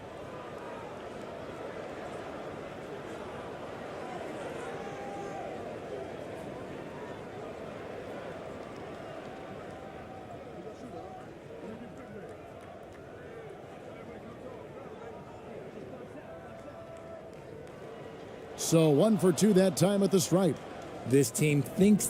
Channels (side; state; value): both; identical; correlation 1.00